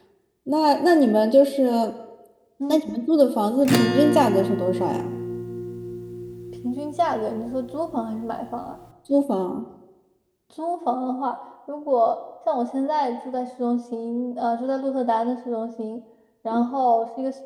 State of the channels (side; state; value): both; identical; correlation 1.00